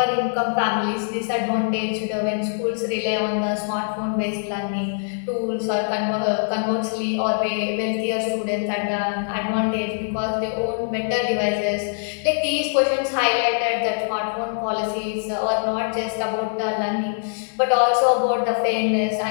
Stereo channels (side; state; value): right; silent; 63 dB below the other